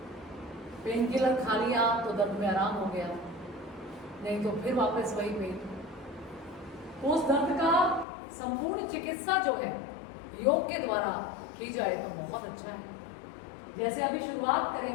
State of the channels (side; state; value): right; drops out; at 8.1 s